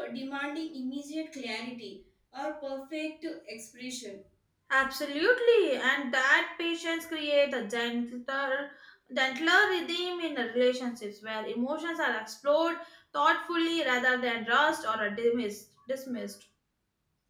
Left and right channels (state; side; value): identical; both; correlation 1.00